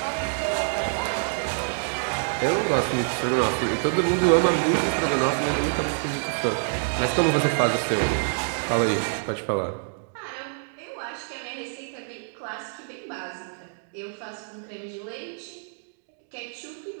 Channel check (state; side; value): silent; left; digital silence